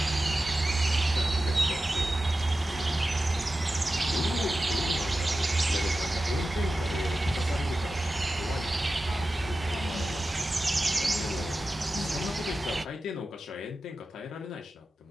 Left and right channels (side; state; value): both; normal; correlation 0.94